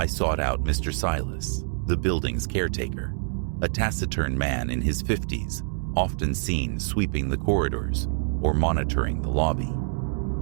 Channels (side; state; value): left; silent; digital silence